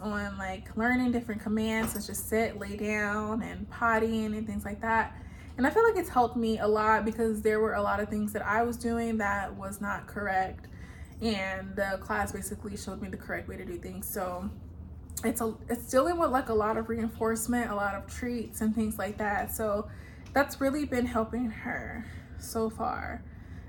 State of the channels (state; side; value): identical; both; correlation 1.00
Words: like learning different commands, such as sit, lay down, and pottying and things like that. And I feel like it's helped me a lot, because there were a lot of things that I was doing that was not correct, and the class basically showed me the correct way to do things. So it's dealing with like a lot of reinforcement, a lot of treats and things like that. So that's really been helping her so far.